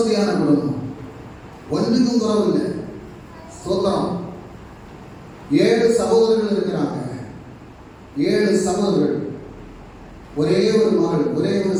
குடும்பம், ஒன்றுக்கும் குறவில்லை. சோத்திரம். 7 சகோதரர்கள் இருக்கிறாங்க. 7 சகோதரர்கள், ஒரே ஒரு மகள், ஒரே ஒரு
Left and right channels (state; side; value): identical; both; correlation 1.00